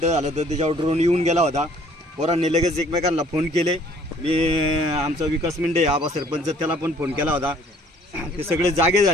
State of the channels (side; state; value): both; normal; correlation 0.57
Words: झालं तर त्याच्यावर ड्रोन येऊन गेला होता. पोरांनी लगेच एकमेकांना फोन केले. मी आमचा विकास मिंडे आबा सरपंच त्याला पण फोन केला होता. ते सगळे जागे